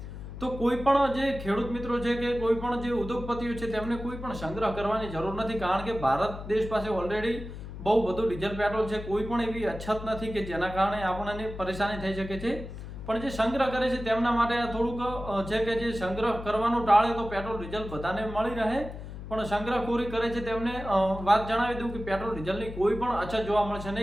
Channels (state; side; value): noise; left; hum, 10 dB below the sound